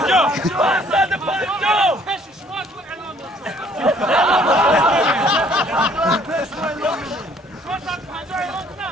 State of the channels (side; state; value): both; normal; correlation 0.60